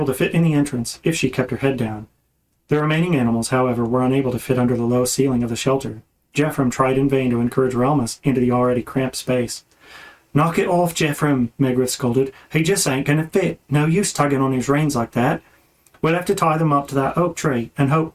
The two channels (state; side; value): identical; both; correlation 1.00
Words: the entrance if she kept her head down. The remaining animals, however, were unable to fit under the low ceiling of the shelter. Jeffrem tried in vain to encourage Relmus into the already cramped space. Knock it off, Jeffrem, Megrith scolded. He just ain't going to fit. No use tugging on his reins like that. We'll have to tie them up to that oak tree and